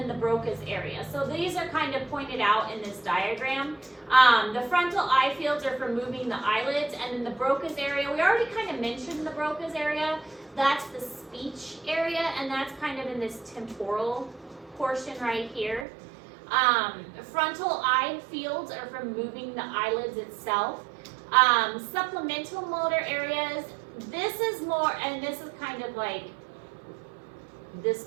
the Broca's area. So these are kind of pointed out in this diagram. The frontal eye fields are for moving the eyelids, and then the Broca's area, we already kind of mentioned the Broca's area. That's the speech area, and that's kind of in this temporal portion right here. Frontal eye fields are for moving the eyelids itself. Supplemental motor areas, this is more, and this is kind of like this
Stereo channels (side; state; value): left; drops out; at 15.9 s